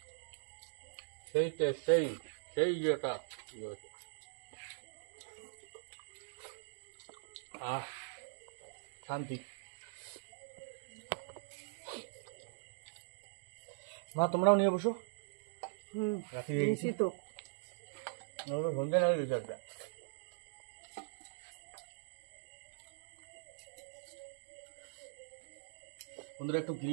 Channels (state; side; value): silent; left; digital silence